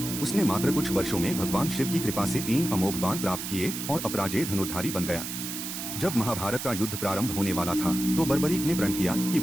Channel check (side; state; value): right; noise; hiss, 6 dB below the sound